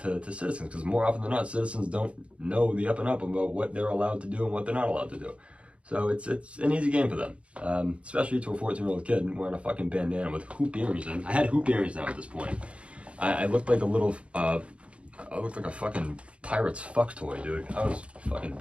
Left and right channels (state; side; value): late; left; 0.061 ms